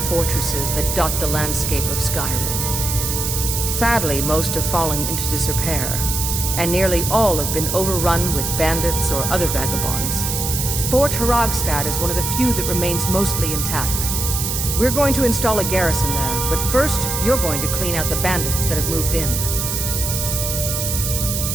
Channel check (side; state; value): right; noise; hiss, 2 dB below the sound